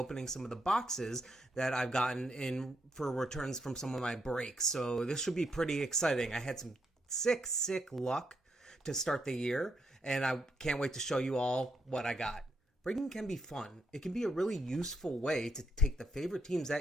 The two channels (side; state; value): both; normal; correlation 0.78